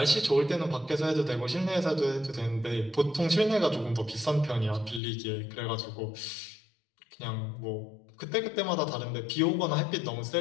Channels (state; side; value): drops out; right; at 5.0 s